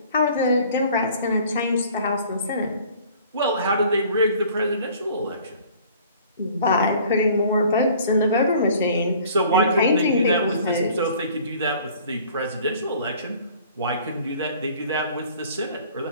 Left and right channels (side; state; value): both; inverted; correlation -0.51